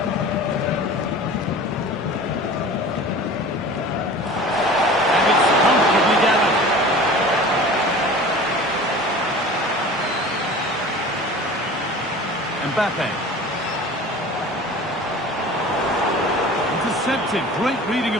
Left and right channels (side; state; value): both; normal; correlation 0.40